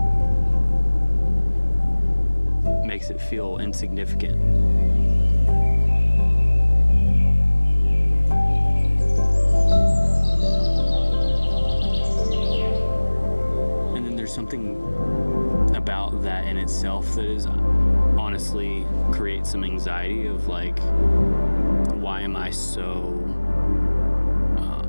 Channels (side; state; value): both; inverted; correlation -1.00